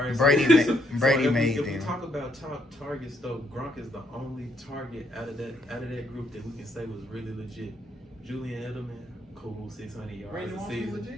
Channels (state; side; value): normal; both; correlation 0.73